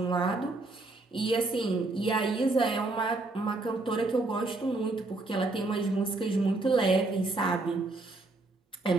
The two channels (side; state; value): left; quieter; 3.1 dB